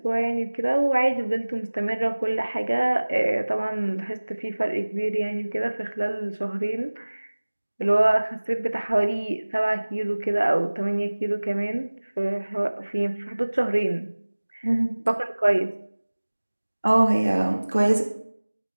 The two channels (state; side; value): inverted; both; correlation -1.00